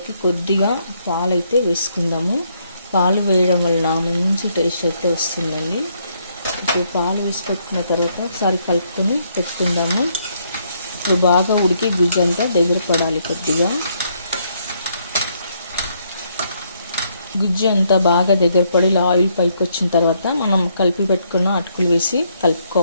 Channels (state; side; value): inverted; both; correlation -0.72